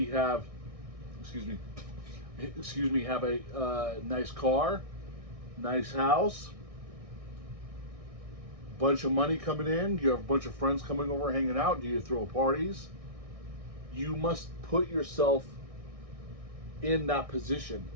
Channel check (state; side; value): late; left; 1.6 ms